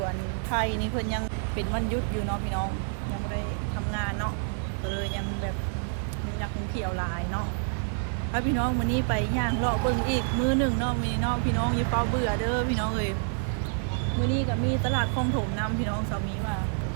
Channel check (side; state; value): left; silent; 59 dB below the other